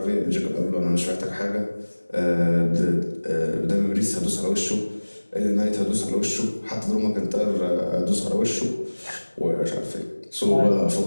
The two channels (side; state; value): both; inverted; correlation -1.00